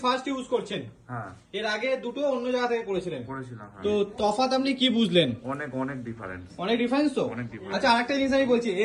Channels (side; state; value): both; identical; correlation 1.00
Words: ফার্স্ট ইউজ করছেন। এর আগে দুটো অন্য জায়গা থেকে করেছিলেন। তো তফাৎ আপনি কি বুঝলেন? অনেক ডিফারেন্স। অনেক ডিফারেন্স তো। অনেক difference। আচ্ছা, আরেকটা জিনিস আমি বলছি,